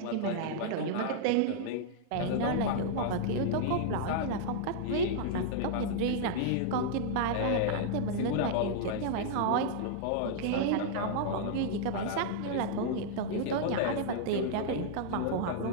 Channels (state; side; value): different; both; correlation -0.01